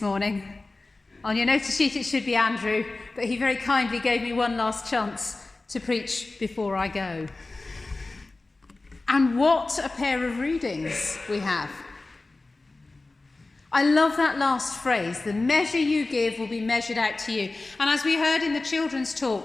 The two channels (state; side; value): quieter; right; 3.3 dB